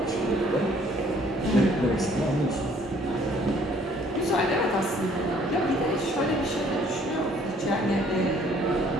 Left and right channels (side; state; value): both; normal; correlation 0.60